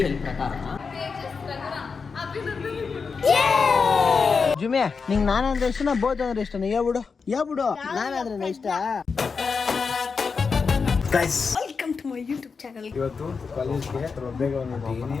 ಎಲ್ ಪ್ರಕಾರ ಜುಮ್ಯಾ ನಿಂಗೆ ನಾನಂದ್ರೆ ಇಷ್ಟನ ಬೋತ್ ಅಂದ್ರೆ ಇಷ್ಟನ? ಯಾಬಿಡು ನಾನಾದ್ರೆ ಇಷ್ಟ. Welcome to my YouTube channel. ಇವತ್ತು ಕಾಲೇಜ್ಗೆ ಬೇಗ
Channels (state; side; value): quieter; right; 5.2 dB